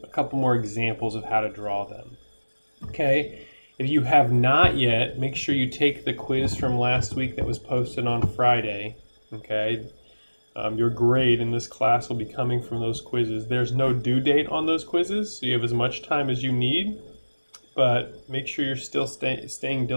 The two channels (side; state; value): both; inverted; correlation -1.00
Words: a couple more examples of how to draw them. Okay, if you have not yet, make sure you take the quiz from last week that was posted on Friday. Okay, your grade in this class will be coming from those quizzes. There's no due date on those quizzes, so you have as much time as you need, but make sure you're still staying